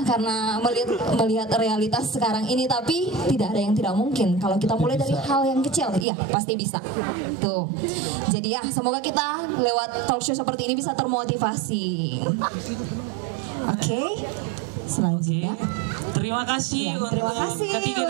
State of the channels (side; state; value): left; drops out; at 6.1 s